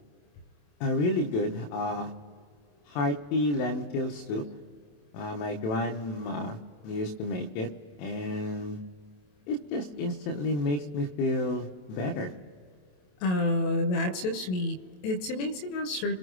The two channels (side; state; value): right; late; 27 ms